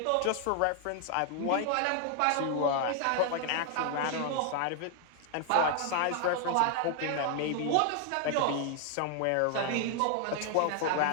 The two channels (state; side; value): different; both; correlation 0.00